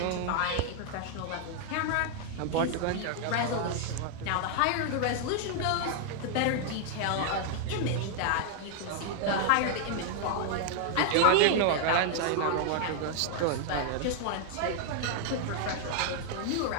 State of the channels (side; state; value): both; different; correlation 0.00